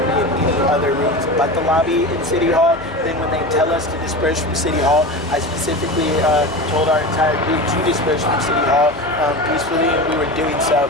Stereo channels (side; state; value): both; normal; correlation 0.28